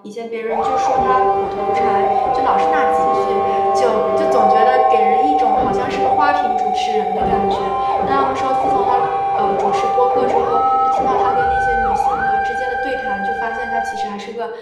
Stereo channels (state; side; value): identical; both; correlation 1.00